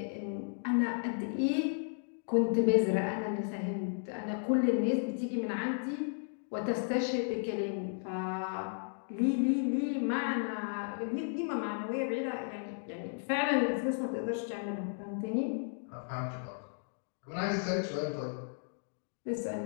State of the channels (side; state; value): right; silent; digital silence